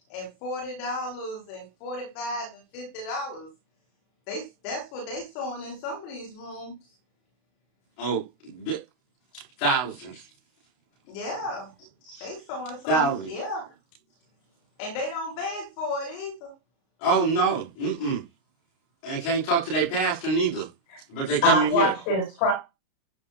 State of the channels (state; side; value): late; right; 32 ms